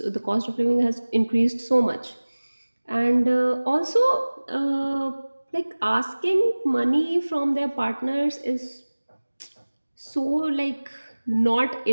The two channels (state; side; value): inverted; both; correlation -1.00